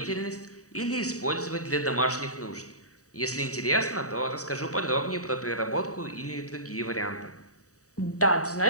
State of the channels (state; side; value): late; right; 0.66 ms